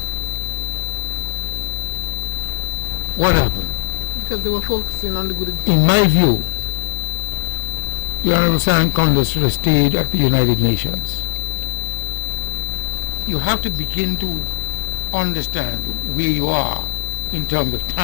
What happened? Because they were focusing on the good. In my view, the Honorable Sam Conda should have stayed at the United Nations. You have to begin to understand where you are in terms of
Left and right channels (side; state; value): right; silent; digital silence